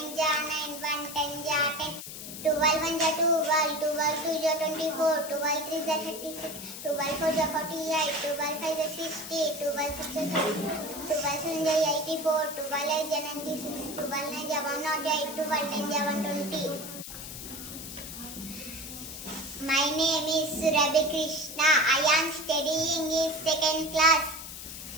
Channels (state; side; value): noise; left; hiss, 10 dB below the sound